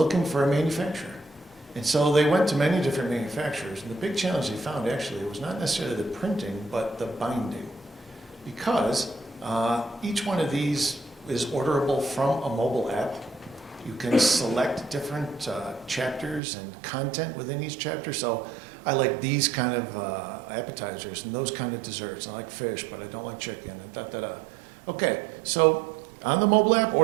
for a manufacturer. And so they went to many different manufacturers, and the big challenge they found actually was not necessarily the printing, but the binding. Because each one of these is orderable from a mobile app. You can select different chapters and content within each chapter. So I like these kind of appetizers and those kind of desserts. I like fish, but I don't like chicken, and da-da-da. Okay, so on the mobile app,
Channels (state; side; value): drops out; left; at 16.4 s